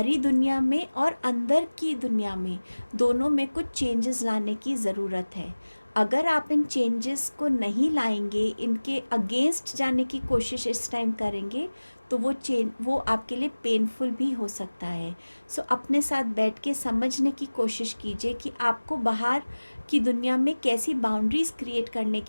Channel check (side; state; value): both; inverted; correlation -1.00